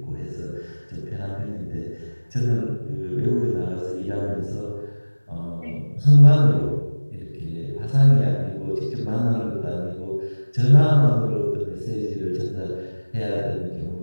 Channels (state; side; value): inverted; both; correlation -1.00